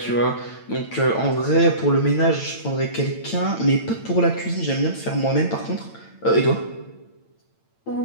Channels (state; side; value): late; right; 8.9 ms